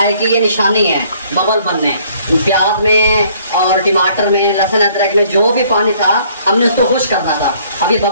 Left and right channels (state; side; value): inverted; both; correlation -0.61